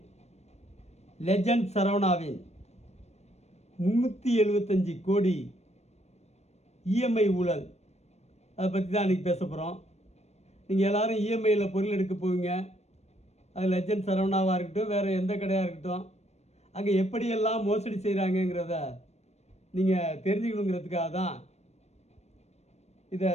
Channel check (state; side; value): late; right; 0.31 ms